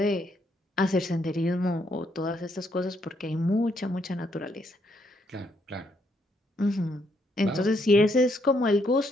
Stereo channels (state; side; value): normal; both; correlation 0.74